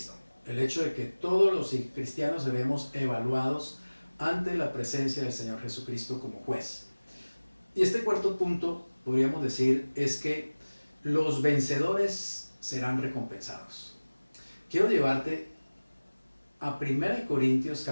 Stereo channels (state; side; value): inverted; both; correlation -1.00